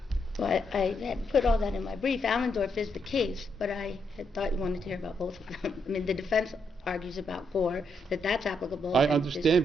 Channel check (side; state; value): both; normal; correlation 0.78